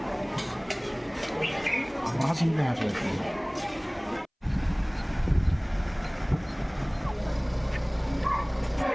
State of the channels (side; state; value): both; identical; correlation 1.00